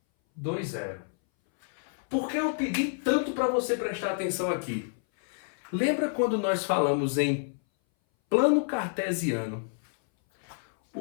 2, 0. Por que eu pedi tanto para você prestar atenção aqui? Lembra quando nós falamos em plano cartesiano?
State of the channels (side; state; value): right; silent; 58 dB below the other